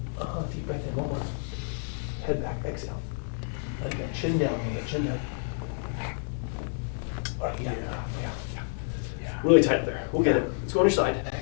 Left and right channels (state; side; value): silent; right; digital silence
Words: Deep breath in. One more. Head back. Exhale. Let it go. Chin down. Chin down. All right, yeah. Really tight up there. We'll get it. Let's go on your side.